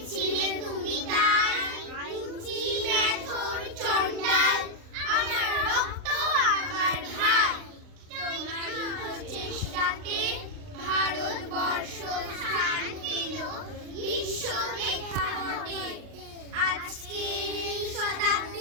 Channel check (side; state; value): left; late; 39 ms